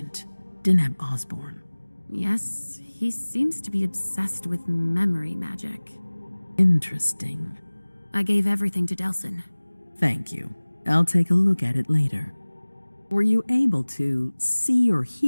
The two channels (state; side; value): inverted; both; correlation -1.00